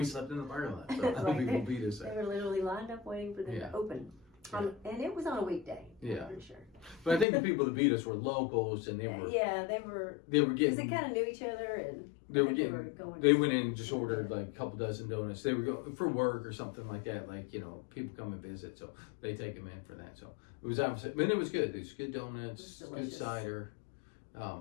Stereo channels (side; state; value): right; drops out; at 7.2 s